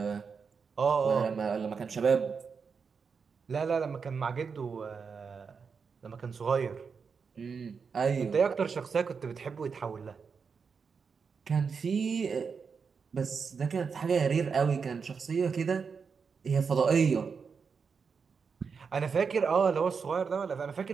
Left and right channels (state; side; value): quieter; left; 5.7 dB